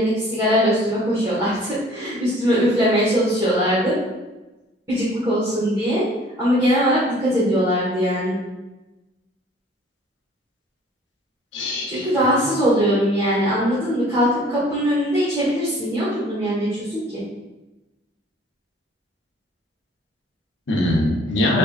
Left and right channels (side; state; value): both; normal; correlation 0.52